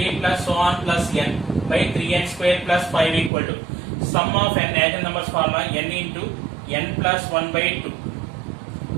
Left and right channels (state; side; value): drops out; left; at 3.3 s